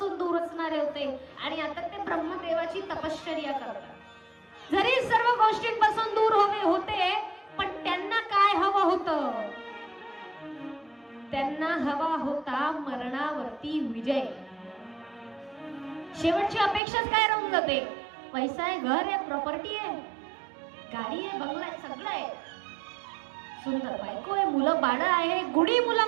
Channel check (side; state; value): left; drops out; at 16.8 s